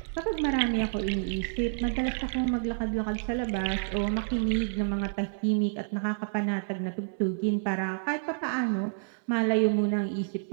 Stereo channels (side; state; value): left; silent; 59 dB below the other